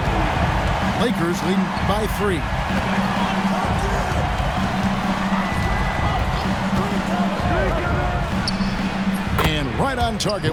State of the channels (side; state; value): both; identical; correlation 1.00